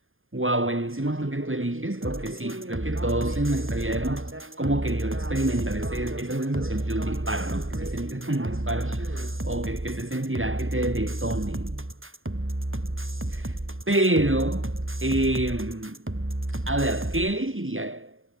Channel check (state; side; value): late; left; 0.59 ms